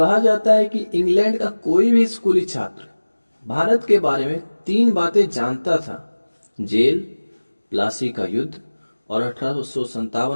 जाता है कि इंग्लैंड का कोई भी स्कूली छात्र भारत के बारे में तीन बातें जानता था: जेल, प्लासी का युद्ध और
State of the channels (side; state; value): both; inverted; correlation -1.00